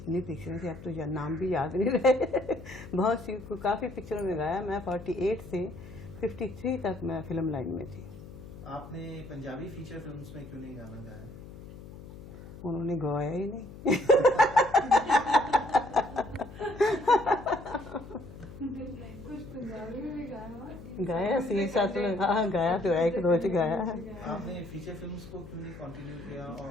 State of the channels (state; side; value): noise; left; hum, 15 dB below the sound